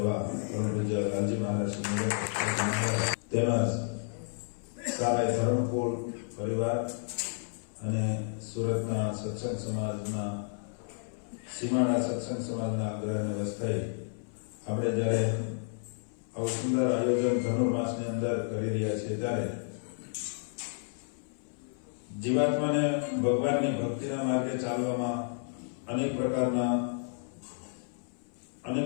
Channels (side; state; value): right; silent; 57 dB below the other